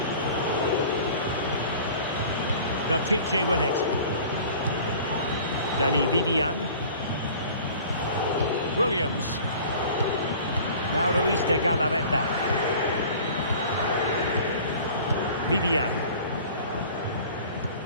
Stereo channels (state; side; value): inverted; both; correlation -0.45